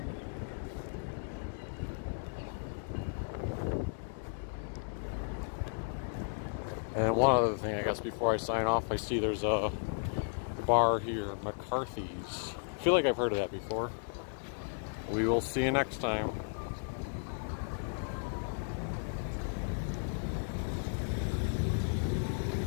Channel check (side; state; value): right; silent; 55 dB below the other